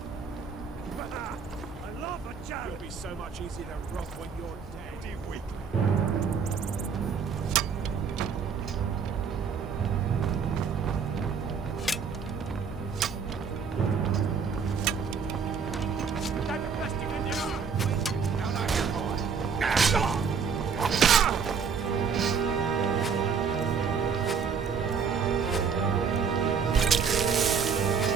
It'll be so much easier to rob when you're dead. You weak. That's the best you can do. Now, now, you're going.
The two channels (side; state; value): left; quieter; 6.2 dB